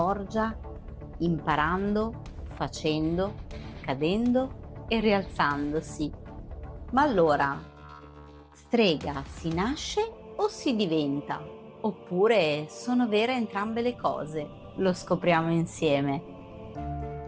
imparando, facendo, cadendo e rialzandosi. Ma allora, strega si nasce o si diventa? Oppure sono vere entrambe le cose? Lo scopriamo insieme.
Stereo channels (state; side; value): identical; both; correlation 1.00